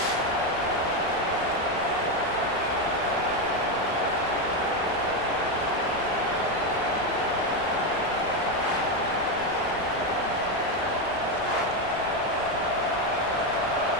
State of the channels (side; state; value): left; noise; rumble, 19 dB below the sound